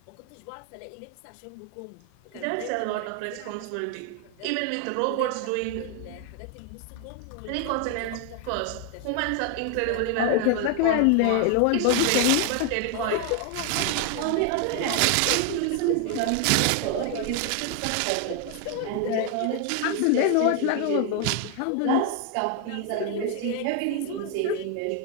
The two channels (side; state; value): both; different; correlation 0.00